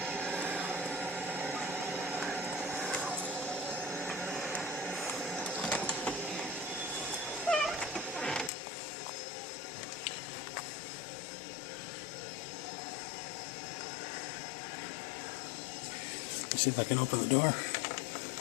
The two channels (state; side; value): drops out; right; at 8.5 s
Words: Let's see if I can open the door